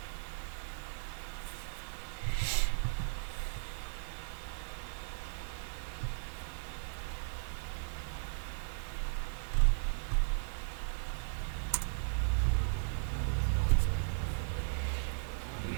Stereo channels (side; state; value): left; silent; 53 dB below the other